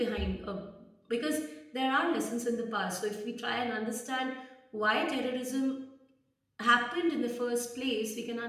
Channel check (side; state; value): both; identical; correlation 1.00